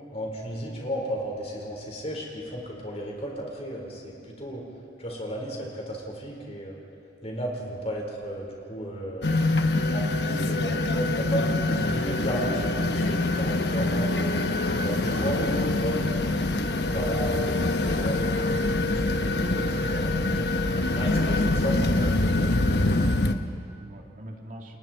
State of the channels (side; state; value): both; normal; correlation 0.60